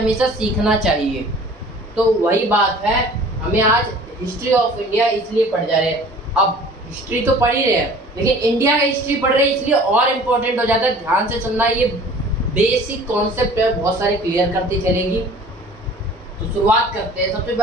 सीखना चाहिए। तो वही बात है, हमें आज हिस्ट्री ऑफ इंडिया इसलिए पढ़ जा रहे हैं। अब हिस्ट्री तो पढ़ ही रहे हैं, लेकिन इंडिया का हिस्ट्री पढ़ रहे हैं इसलिए और इम्पोर्टेंट हो जाता है। ध्यान से सुनना, ये बेसिक कॉन्सेप्ट है, बहुत सारे क्लियर करती चलेगी। तो शुरुआत करते हैं। सबसे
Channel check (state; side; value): normal; both; correlation 0.47